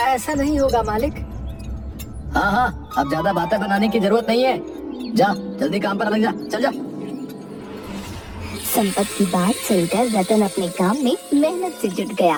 ऐसा नहीं होगा मालिक। हाँ हाँ, अब ज्यादा बातें बनाने की जरूरत नहीं है, जा जल्दी काम पर लग जा, चल जा। संपत की बात सुनकर रतन अपने काम में मेहनत से जुट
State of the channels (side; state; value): both; identical; correlation 1.00